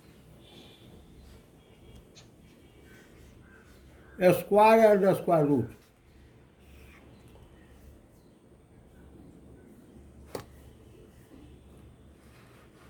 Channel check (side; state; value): both; identical; correlation 1.00